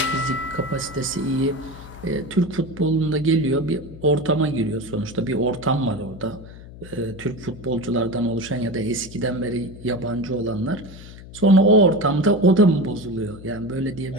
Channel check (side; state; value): left; noise; hum, 16 dB below the sound